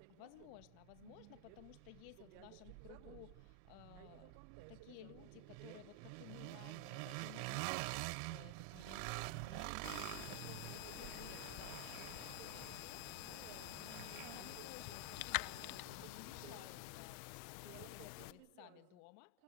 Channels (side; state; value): both; different; correlation 0.00